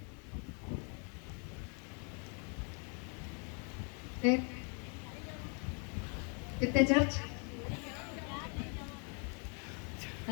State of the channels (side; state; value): right; quieter; 37.8 dB